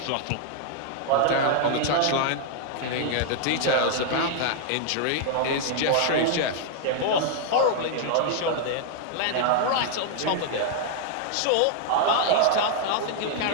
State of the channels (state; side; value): different; both; correlation 0.00